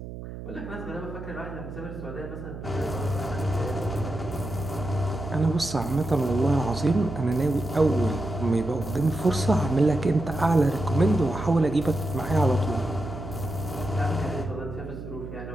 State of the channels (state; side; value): noise; right; hum, 10 dB below the sound